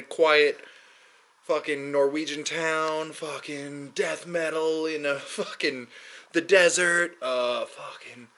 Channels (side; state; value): both; identical; correlation 1.00